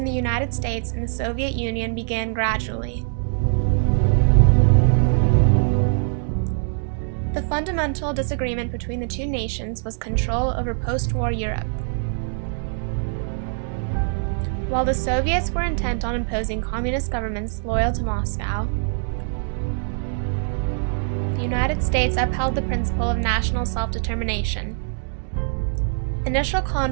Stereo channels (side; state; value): left; silent; digital silence